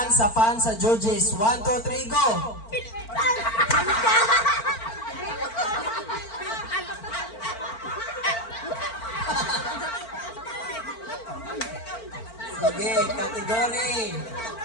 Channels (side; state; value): right; late; 4.4 ms